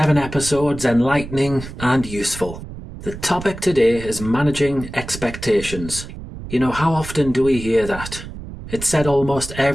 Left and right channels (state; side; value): noise; right; rumble, 11 dB below the sound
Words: episodes enlightening and useful. The topic today is managing expectations. You know, how often do we hear that? It's said almost